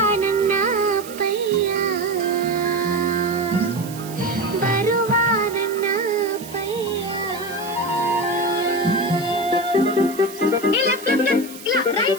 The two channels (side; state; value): right; noise; hiss, 16 dB below the sound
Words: ನನ್ನ ಅಪ್ಪಯ್ಯ, ಬರುವ ನನ್ನ ಅಪ್ಪಯ್ಯ.